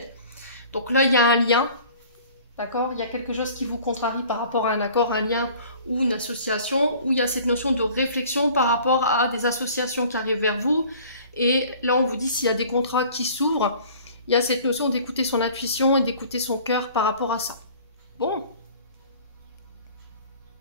Donc là, il y a un lien, d'accord? Il y a quelque chose qui vous contrarie par rapport à un accord, un lien ou une association, où il y a cette notion de réflexion par rapport à des associations qui arrivent vers vous. Et là, on vous dit s'il y a des contrats qui s'ouvrent, il y a cette notion d'écouter son intuition et d'écouter son cœur par rapport à ça. Bon.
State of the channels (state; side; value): inverted; both; correlation -0.49